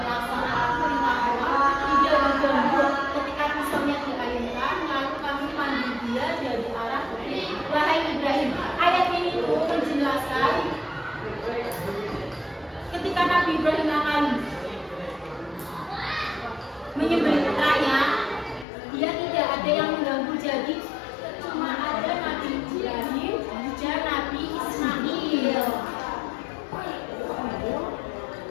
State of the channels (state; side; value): drops out; right; at 18.7 s